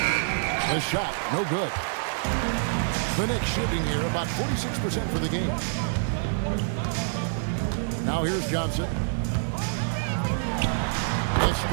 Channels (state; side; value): silent; left; digital silence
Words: shot, no good. The Knicks shooting here about 46% for the game. Now here's Johnson. The